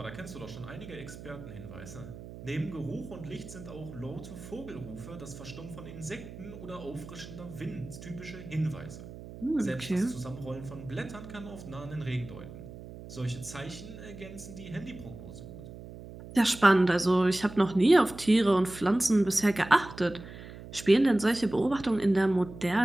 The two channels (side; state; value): right; noise; hum, 14 dB below the sound